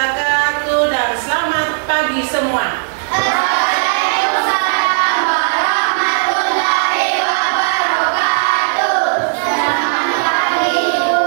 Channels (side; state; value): left; silent; 60 dB below the other